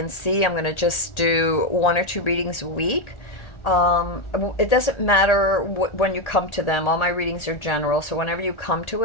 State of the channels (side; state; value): right; late; 1.8 ms